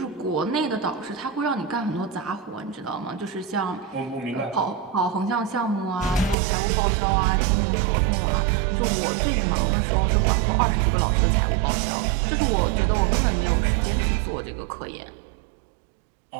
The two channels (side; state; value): left; drops out; at 6.4 s